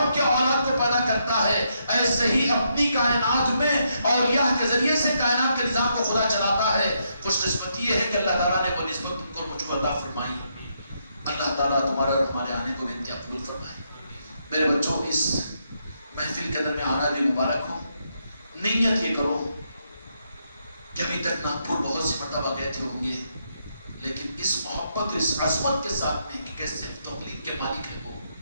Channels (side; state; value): both; inverted; correlation -0.78